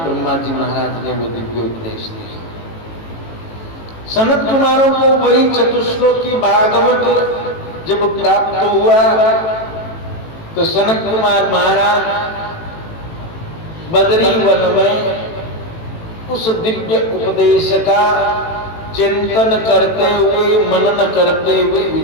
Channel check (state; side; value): late; right; 18 ms